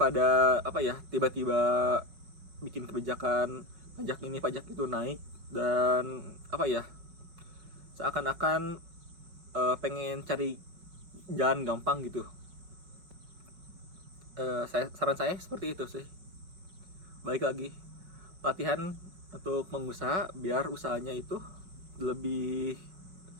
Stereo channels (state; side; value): late; left; 5.6 ms